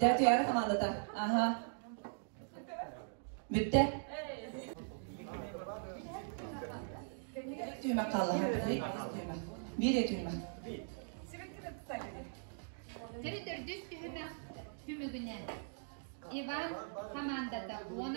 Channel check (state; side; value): silent; left; digital silence